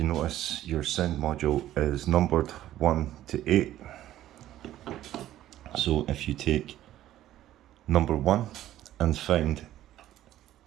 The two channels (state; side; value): quieter; left; 13.3 dB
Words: notice, your sound module is numbered 1 to 8. So if you take number 1 and find